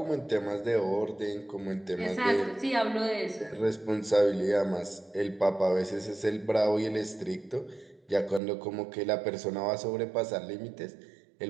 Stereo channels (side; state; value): left; drops out; at 8.4 s